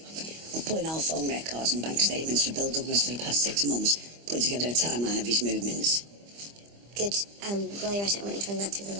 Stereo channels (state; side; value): late; left; 25 ms